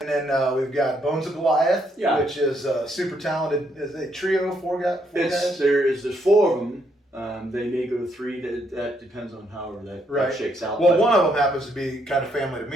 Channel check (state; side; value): normal; both; correlation 0.74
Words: then we've got Bones of Goliath, which is super talented. Is a trio, four guys? There's 4 of them. They may go to 3. That depends on however that shakes out. Well, one of them happens to be kind of family to